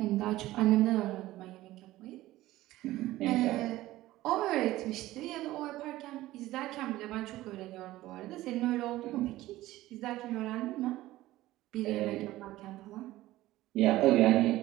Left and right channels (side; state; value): left; quieter; 16.4 dB